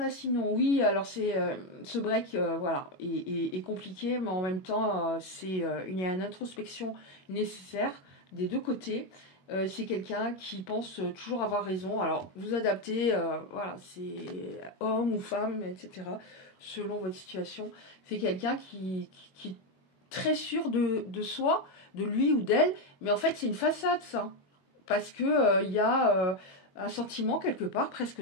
sinon? Oui, alors c'est ce break, voilà, est compliqué, mais en même temps, il y a une introspection nécessaire des deux côtés. C'est quelqu'un qui pense toujours avoir raison. Alors, vous adaptez, voilà, c'est homme ou femme, etc., selon votre situation. C'est quelqu'un qui est très sûr de soi, de lui ou d'elle, mais en fait, c'est une façade, ça. Parce que il y a un sentiment, quelque part, presque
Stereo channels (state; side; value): late; right; 21 ms